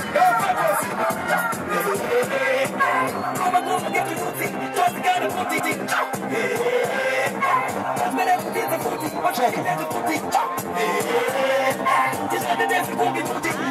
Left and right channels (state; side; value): identical; both; correlation 1.00